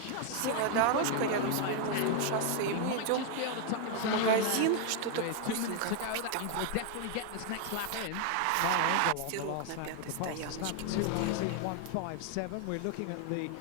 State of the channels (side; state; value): both; different; correlation 0.00